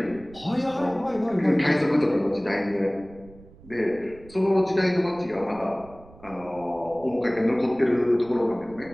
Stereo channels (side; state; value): right; noise; rumble, 22 dB below the sound